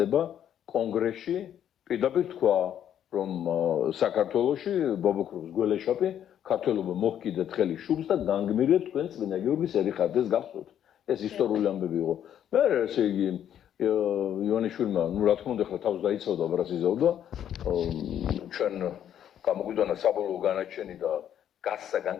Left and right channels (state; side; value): quieter; right; 10.0 dB